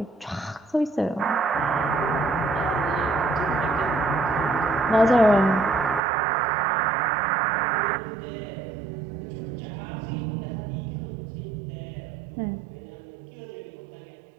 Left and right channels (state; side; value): drops out; left; at 6.0 s